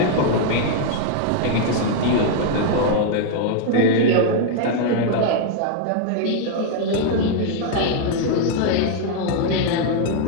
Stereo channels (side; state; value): both; different; correlation 0.00